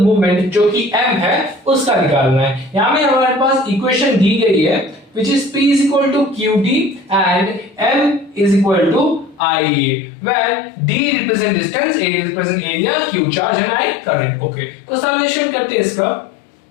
मूवमेंट जो कि M है उसका निकालना है। यहां में हमारे पास इक्वेशन दी गई है which is P is equal to QD and M is equal to IA, where D represent distance, A represent area, Q charge and I current। Okay तो सॉल्यूशन करते हैं इसका।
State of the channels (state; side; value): drops out; right; at 9.4 s